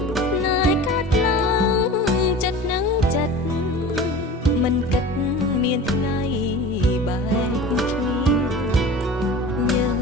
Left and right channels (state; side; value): normal; both; correlation 0.37